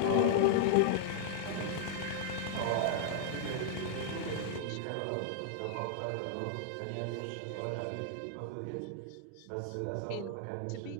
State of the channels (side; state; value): both; different; correlation -0.01